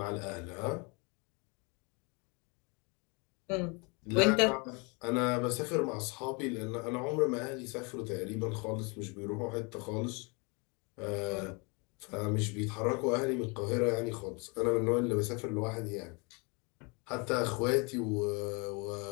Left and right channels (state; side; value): quieter; right; 31.0 dB